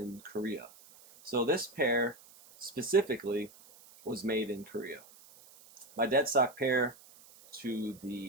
Korea. So this pair specifically was made in Korea. My dead stock pair to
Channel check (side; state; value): right; noise; hiss, 23 dB below the sound